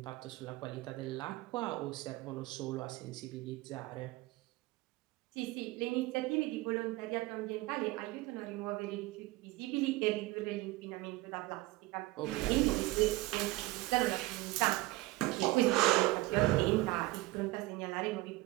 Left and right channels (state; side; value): quieter; left; 19.3 dB